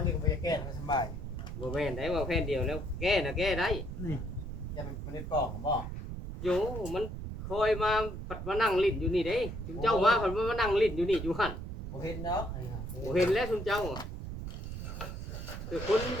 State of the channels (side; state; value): right; noise; rumble, 7 dB below the sound